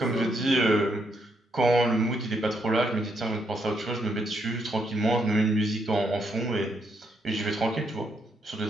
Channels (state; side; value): normal; both; correlation 0.77